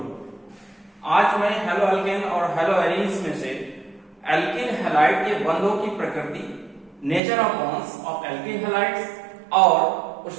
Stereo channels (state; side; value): drops out; left; at 7.2 s